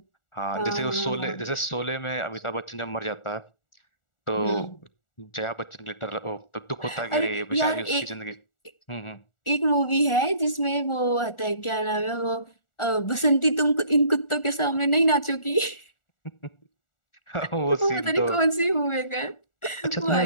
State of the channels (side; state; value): right; late; 1.4 ms